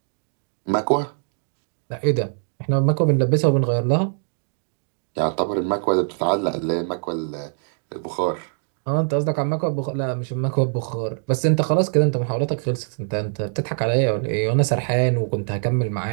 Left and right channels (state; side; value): silent; left; digital silence